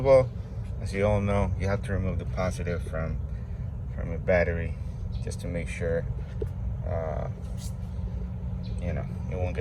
all, as you all know, you have to remove the positive from a battery just to make sure you won't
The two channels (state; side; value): identical; both; correlation 1.00